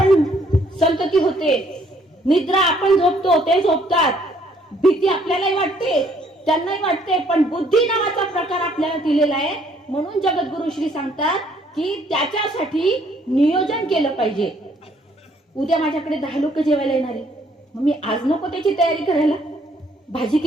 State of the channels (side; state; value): both; normal; correlation 0.65